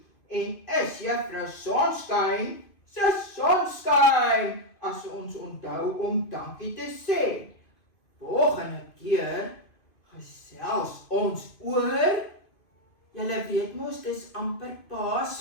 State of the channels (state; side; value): late; right; 2.5 ms